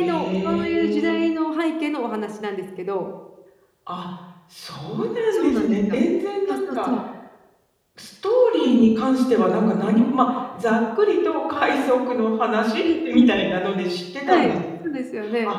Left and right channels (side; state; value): both; identical; correlation 1.00